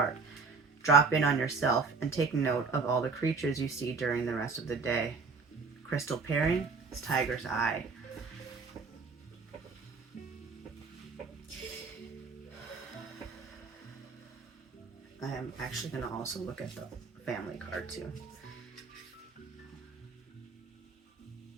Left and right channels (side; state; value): left; quieter; 4.6 dB